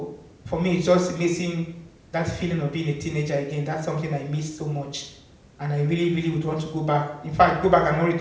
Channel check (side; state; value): both; identical; correlation 1.00